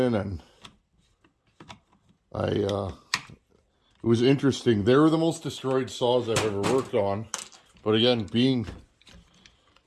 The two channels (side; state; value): both; identical; correlation 1.00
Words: and it was interesting. They were the most destroyed saws I've ever worked on. But again, being